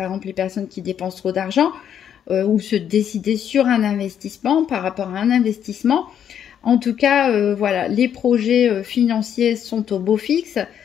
exemple, les personnes qui dépensent trop d'argent, ou se décider sur un investissement par rapport à un investissement. En tout cas, voilà, les projets financiers sont au beau fixe.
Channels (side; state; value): right; quieter; 9.1 dB